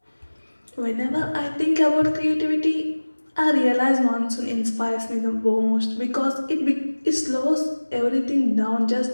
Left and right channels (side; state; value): both; inverted; correlation -1.00